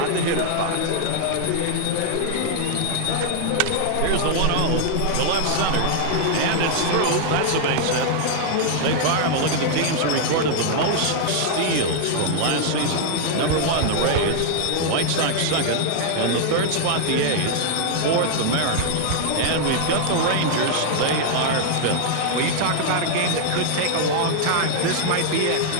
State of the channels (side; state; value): both; different; correlation 0.00